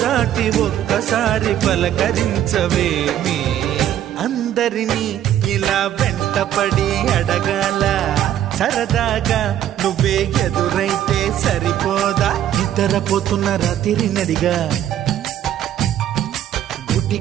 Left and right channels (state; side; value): quieter; left; 11.2 dB